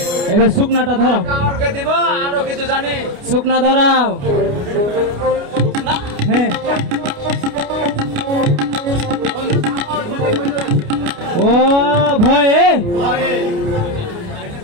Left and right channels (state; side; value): late; left; 29 ms